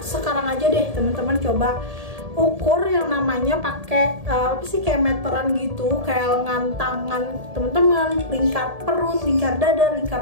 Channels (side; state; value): left; late; 1.7 ms